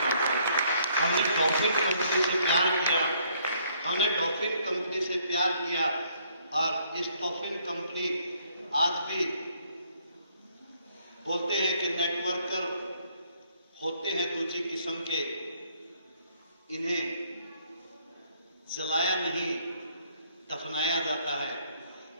आते। हमने डॉल्फिन कंपनी से प्यार किया, हमने डॉल्फिन कंपनी से प्यार किया, और इस डॉल्फिन कंपनी आज भी बोलते हैं कि नेटवर्कर होते हैं दूसरी किस्म के, इन्हें जलाया नहीं दफनाया जाता है।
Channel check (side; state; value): both; inverted; correlation -0.66